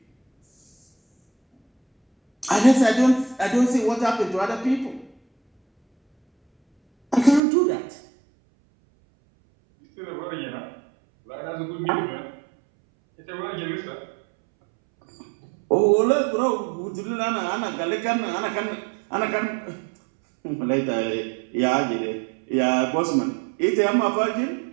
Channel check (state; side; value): drops out; left; at 7.4 s